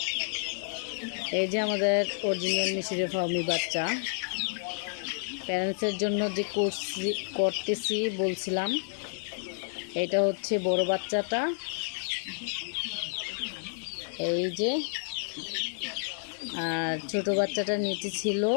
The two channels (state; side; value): silent; right; digital silence